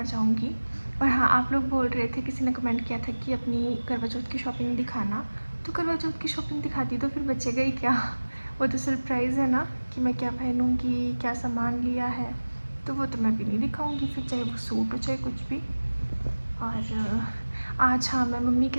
जाऊंगी। और हाँ, आप लोग बोल रहे थे, किसी ने कमेंट किया था कि अपनी करवा चौथ की शॉपिंग दिखाना। तो करवा चौथ की शॉपिंग दिखाती तो फिर बचेगा ही क्या। वो तो सरप्राइज़ है ना कि मैं क्या पहनूंगी, क्या सामान लिया है, तो वो तो मैं भी नहीं दिखाऊंगी फिर, चाहे वो सूट हो चाहे कुछ भी। और आज हाँ, मैं मम्मी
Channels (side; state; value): both; inverted; correlation -1.00